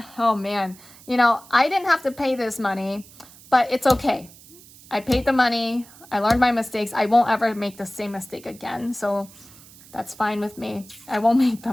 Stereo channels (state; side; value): noise; right; hiss, 22 dB below the sound